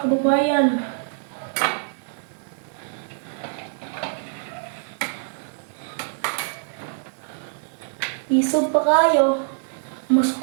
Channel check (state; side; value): silent; left; 62 dB below the other